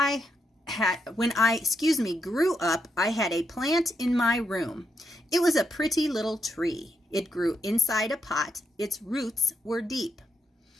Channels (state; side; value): normal; both; correlation 0.80